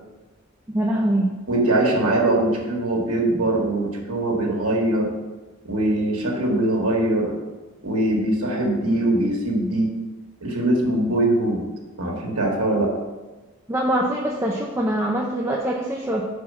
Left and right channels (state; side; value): normal; both; correlation 0.41